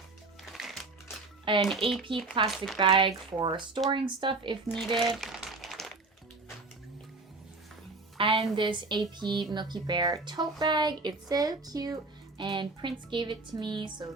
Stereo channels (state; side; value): quieter; left; 3.5 dB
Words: An AP plastic bag for storing stuff if needed. And this AP Milky Bear tote bag. It's so cute. And Prince gave it to me, so